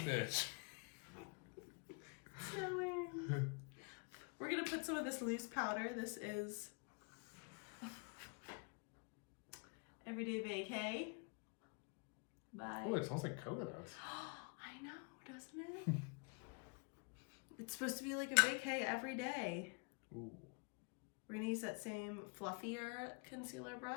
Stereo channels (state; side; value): quieter; right; 34.6 dB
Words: Snowing. We're gonna put some of this loose powder. This is Everyday Vacay. Bye. Oh, it smells like coconuts. I know, doesn't it? It's supposed to be like a vacay every day. Ooh. We're gonna use that same fluffier concealer